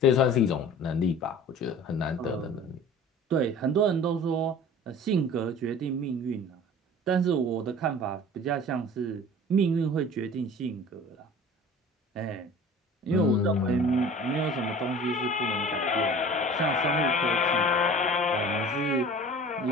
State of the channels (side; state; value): both; normal; correlation 0.42